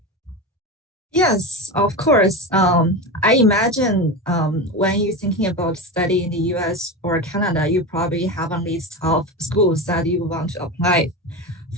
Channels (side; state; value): both; normal; correlation 0.22